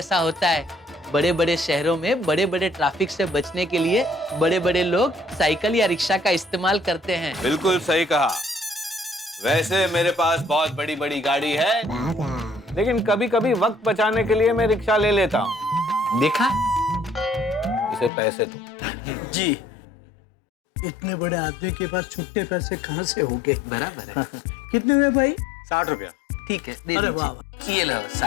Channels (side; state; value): right; drops out; at 18.1 s